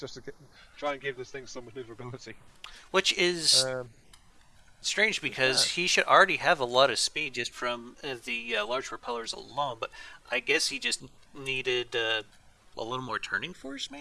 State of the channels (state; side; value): identical; both; correlation 1.00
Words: to try and give this thing some maneuverability. Which is strange because he should already have a lot of speed just from the large propellers alone, but I guess he just needed a little more turning force,